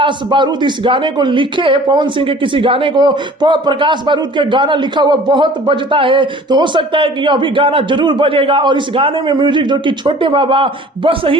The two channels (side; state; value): both; normal; correlation 0.47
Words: बारूद इस गाने को लिखे। पवन सिंह के किसी गाने को प्रकाश बारूद के गाना लिखा हुआ बहुत बजता है, तो हो सकता है कि यह भी गाना जरूर बजेगा। और इस गाने में म्यूजिक जो कि छोटे बाबा बस